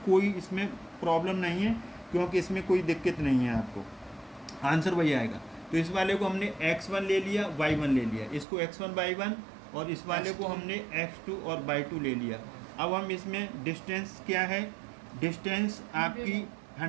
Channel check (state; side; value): drops out; left; at 8.5 s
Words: कोई इसमें प्रॉब्लम नहीं है, क्योंकि इसमें कोई दिक्कत नहीं है, आपको आंसर वही आएगा। तो इस वाले को हमने x1 ले लिया, y1 ले लिया, इसको x1 y1, और इस वाले को हमने x2 और y2 ले लिया। अब हम इसमें डिस्टेंस क्या है, डिस्टेंस आपकी